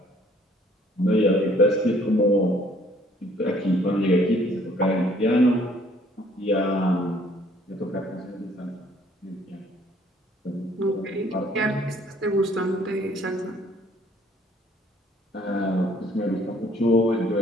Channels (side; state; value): both; normal; correlation 0.60